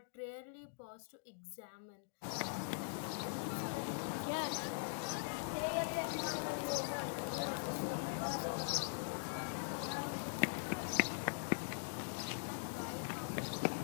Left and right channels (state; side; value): silent; right; digital silence